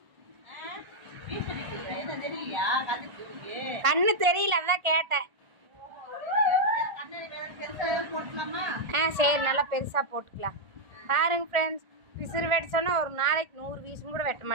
கண்ணு தெரியல, அதான் கேட்டேன். சரி, நல்லா பெருசா போட்டுக்கலாம். பாருங்க ஃப்ரெண்ட்ஸ், பிசிறு வெட்ட சொன்னா ஒரு நாளைக்கு 100 வீசும் கூட வெட்ட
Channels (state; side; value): late; left; 1.5 ms